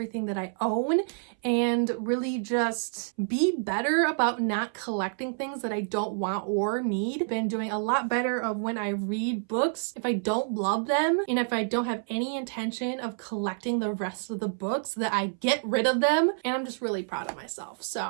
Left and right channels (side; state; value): left; silent; 59 dB below the other